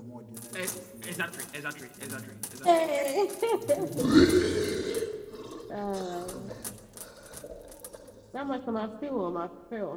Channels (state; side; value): identical; both; correlation 1.00